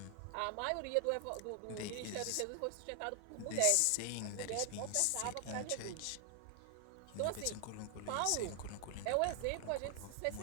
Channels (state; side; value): different; both; correlation 0.00